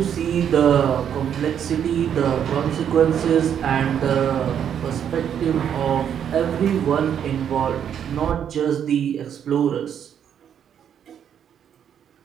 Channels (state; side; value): quieter; left; 8.8 dB